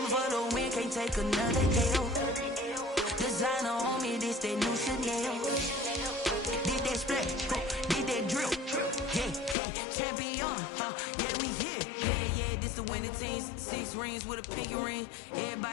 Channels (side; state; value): right; drops out; at 9.6 s